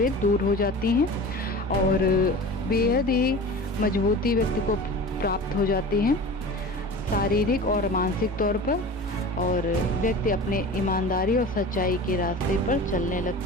दूर हो जाती हैं और बेहद ही मजबूती व्यक्ति को प्राप्त हो जाती है, शारीरिक और मानसिक तौर पर। और व्यक्ति अपने ईमानदारी और सच्चाई के रास्ते पर चलने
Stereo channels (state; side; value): normal; both; correlation 0.36